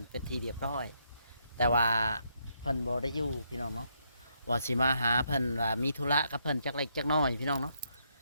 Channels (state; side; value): inverted; both; correlation -0.76